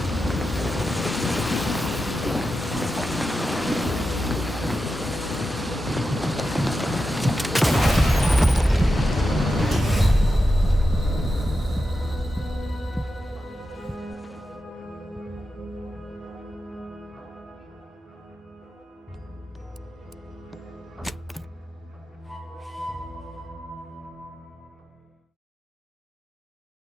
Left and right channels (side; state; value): both; normal; correlation 0.90